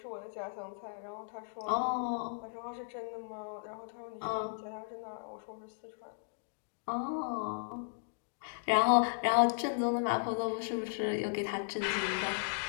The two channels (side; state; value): right; silent; digital silence